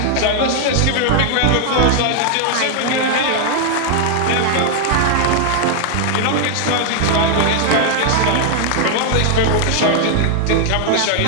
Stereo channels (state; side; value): different; both; correlation 0.00